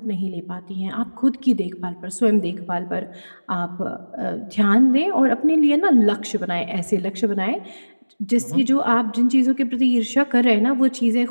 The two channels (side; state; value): both; inverted; correlation -1.00